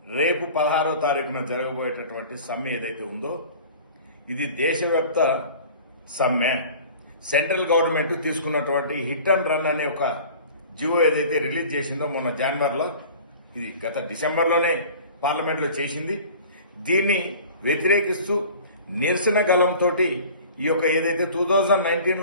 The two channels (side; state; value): both; inverted; correlation -0.43